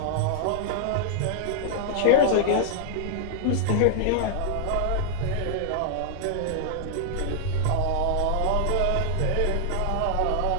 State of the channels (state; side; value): different; both; correlation -0.01